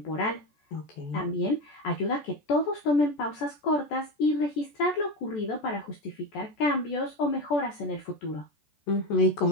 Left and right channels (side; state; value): right; late; 14 ms